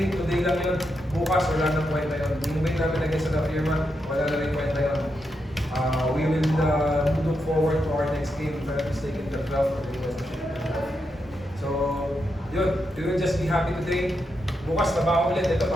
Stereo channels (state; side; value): normal; both; correlation 0.84